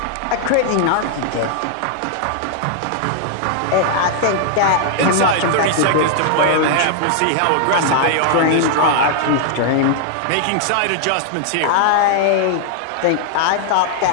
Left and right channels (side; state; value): both; different; correlation 0.00